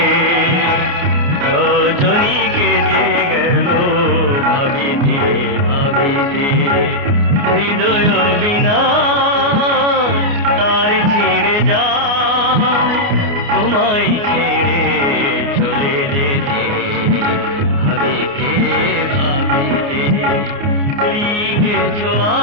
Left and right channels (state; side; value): late; left; 29 ms